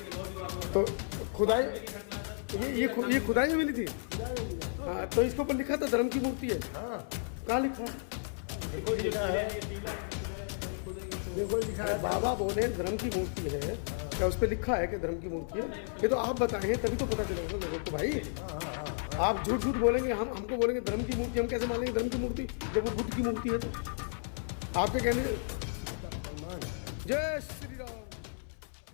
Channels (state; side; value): silent; right; 56 dB below the other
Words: तो खुदाई ये खुदाई में मिली थी। हाँ, तो इसके ऊपर लिखा था धर्म की मूर्ति है। कहाँ लिखा है? देखो लिखा है, बाबा बोले धर्म की मूर्ति है। क्या उस पर लिखा है कि धर्म की मूर्ति है? ये तो आप बताएं तभी तो पता चलेगा लोगों को भाई। आप झूठ झूठ बोलेंगे, हमको बोलेंगे धर्म की मूर्ति, हम कैसे मानेंगे धर्म की मूर्ति जब वो बुद्ध की मूर्ति है? तो आपके कहने। जय श्री राम।